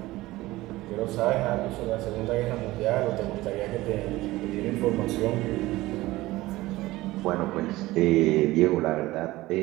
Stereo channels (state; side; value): quieter; left; 18.4 dB